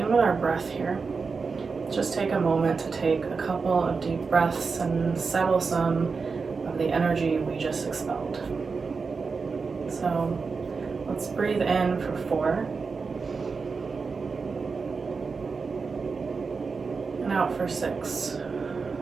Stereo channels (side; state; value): left; quieter; 4.8 dB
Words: with our breath here. Just take a moment to take a couple of deep breaths and settle some of the energy we just expelled. So let's breathe in for 4. And out for 6.